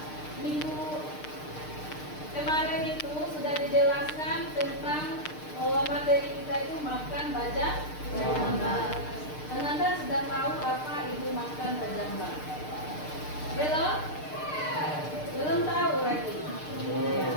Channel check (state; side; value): late; right; 6.6 ms